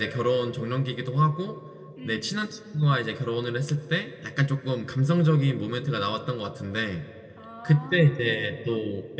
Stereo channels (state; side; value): identical; both; correlation 1.00